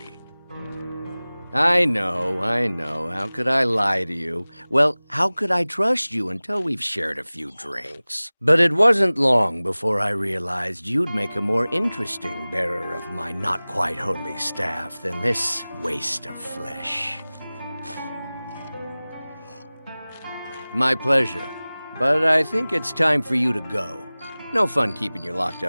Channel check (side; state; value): both; inverted; correlation -0.99